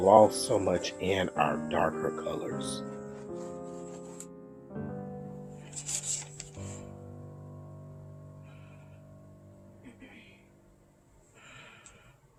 so much in our darker colors.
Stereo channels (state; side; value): identical; both; correlation 1.00